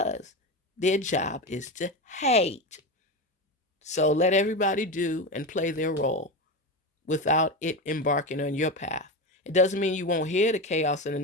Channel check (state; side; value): normal; both; correlation 0.19